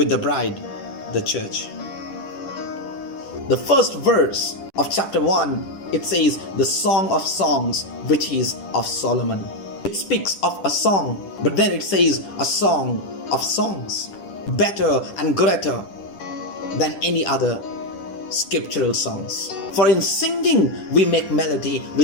the bride, the church. The first verse of chapter 1, it says, the Song of Songs, which is of Solomon. It speaks of a song, but then it says a song of songs, better and greater than any other scriptural songs. For in singing we make melody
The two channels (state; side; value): late; right; 10 ms